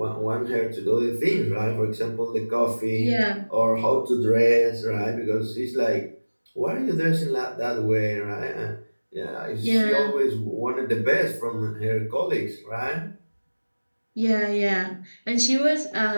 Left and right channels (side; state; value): both; inverted; correlation -1.00